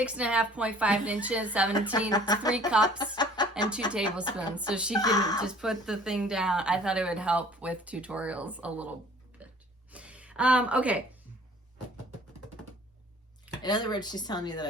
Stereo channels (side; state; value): both; normal; correlation 0.52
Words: inches, 17, 3 cups and 2 tablespoons. So she can just put the thing down. I thought it would help with tutorials a little bit. Okay. In other words, she's telling me that